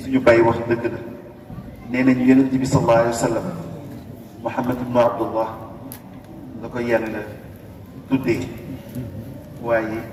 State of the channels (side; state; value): both; identical; correlation 1.00